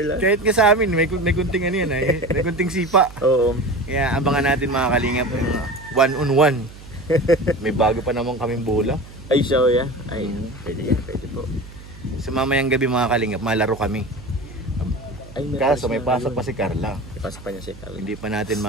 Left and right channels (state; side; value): noise; right; hum, 18 dB below the sound